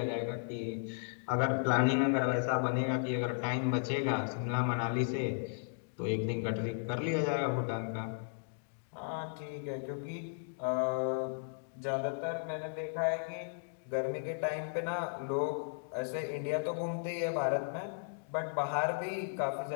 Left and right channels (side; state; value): right; silent; digital silence